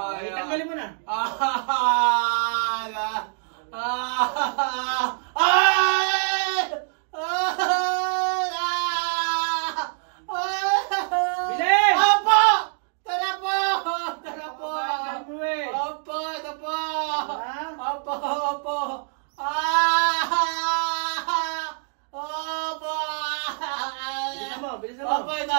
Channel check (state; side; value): silent; left; 62 dB below the other